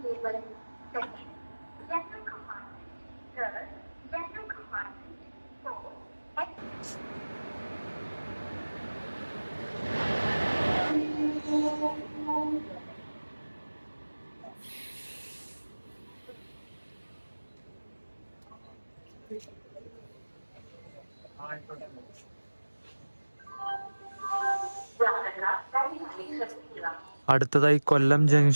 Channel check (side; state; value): both; inverted; correlation -1.00